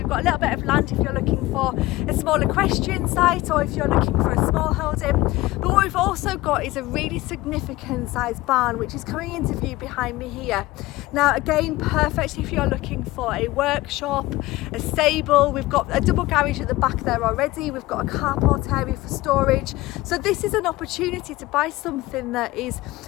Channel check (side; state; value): right; quieter; 18.6 dB